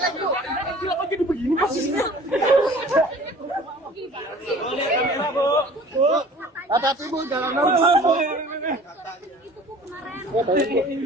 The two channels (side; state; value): both; normal; correlation 0.47